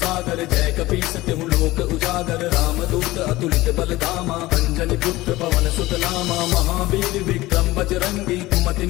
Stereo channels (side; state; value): right; quieter; 18.5 dB